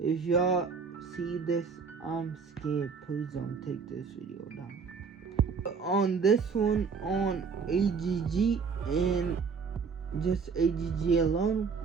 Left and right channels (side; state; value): left; quieter; 5.4 dB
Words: y'all see this, I'm scared. Please don't take this video down. On this one, on AGG and Just AGG alone,